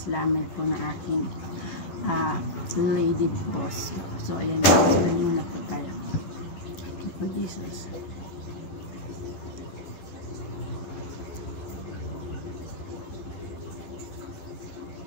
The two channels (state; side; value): late; right; 12 ms